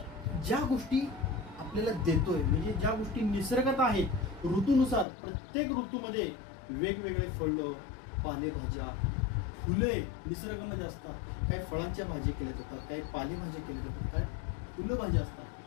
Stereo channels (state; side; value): drops out; right; at 5.1 s